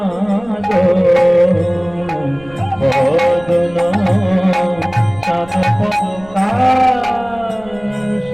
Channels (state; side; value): noise; right; rumble, 23 dB below the sound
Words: বদন চাঁদ পরকাশ